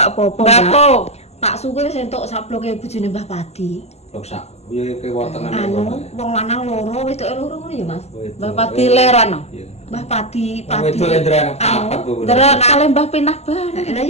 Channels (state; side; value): late; right; 0.31 ms